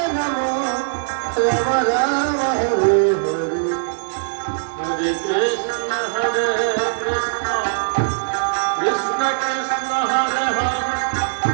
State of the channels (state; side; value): silent; left; 65 dB below the other